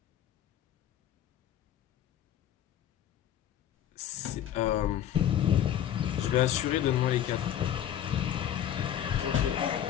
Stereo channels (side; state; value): right; quieter; 10.7 dB